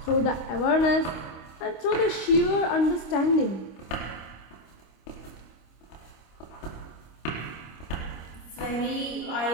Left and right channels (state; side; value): late; right; 25 ms